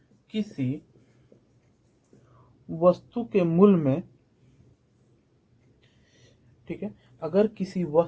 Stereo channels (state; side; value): identical; both; correlation 1.00